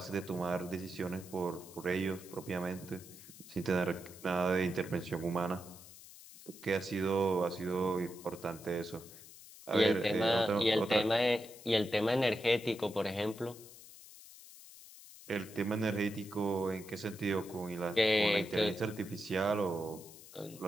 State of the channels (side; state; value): left; noise; hiss, 18 dB below the sound